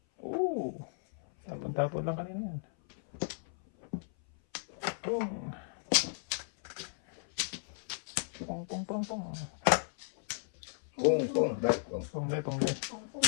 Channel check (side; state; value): right; silent; 54 dB below the other